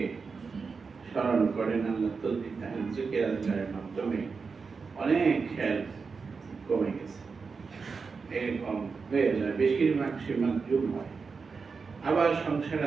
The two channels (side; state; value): left; quieter; 5.0 dB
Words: স্মরণ করেন, আল্লাহ তসবিহ তাহলিল জিকির আজকারের মাধ্যমে অনেক খেয়াল কমে গেছে, এরকম হয়ে যায়। বেশিরভাগ সে মাতজুব হয়। আবার সংসার